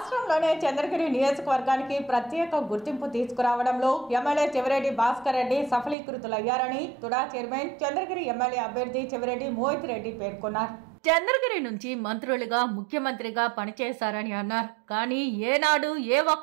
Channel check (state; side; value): drops out; left; at 6.0 s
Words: చంద్రగిరి నియోజకవర్గానికి ప్రత్యేక గుర్తింపు తీసుకురావడంలో ఎమ్మెల్యే చెవిరెడ్డి భాస్కర్ రెడ్డి సఫలీకృతులయ్యారని తుడా చైర్మన్ చంద్రగిరి ఎమ్మెల్యే అభ్యర్థి చెవిరెడ్డి మోహిత్ రెడ్డి పేర్కొన్నారు. చంద్రగిరి నుంచి మంత్రులుగా ముఖ్యమంత్రిగా పనిచేశారని అన్నారు. కానీ ఏనాడు ఏ